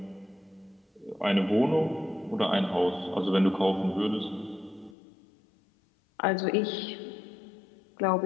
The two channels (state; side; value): drops out; right; at 5.0 s